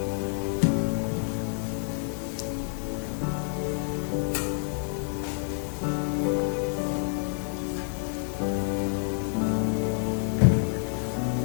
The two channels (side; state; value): right; silent; 59 dB below the other